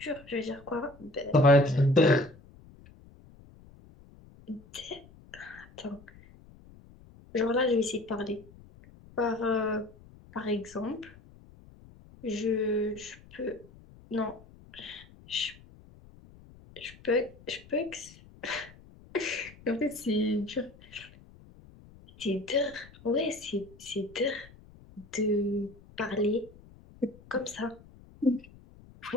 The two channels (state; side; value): noise; left; rumble, 23 dB below the sound